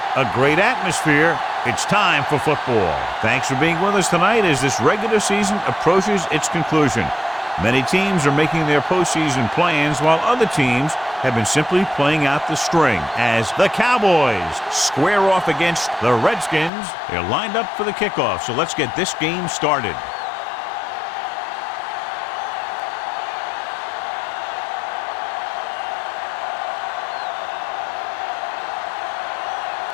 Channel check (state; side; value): drops out; right; at 16.7 s